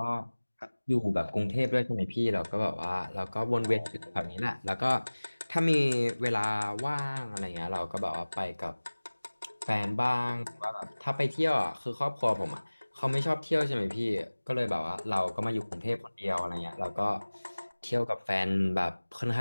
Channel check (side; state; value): both; inverted; correlation -1.00